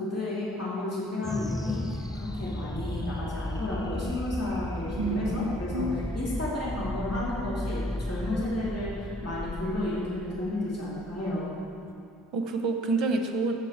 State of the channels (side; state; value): both; normal; correlation 0.61